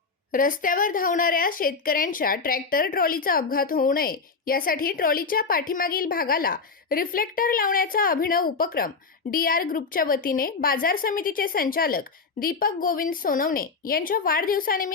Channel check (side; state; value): right; quieter; 4.7 dB